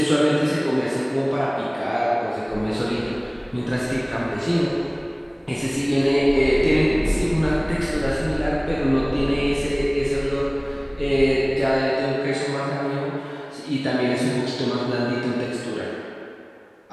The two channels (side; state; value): both; identical; correlation 1.00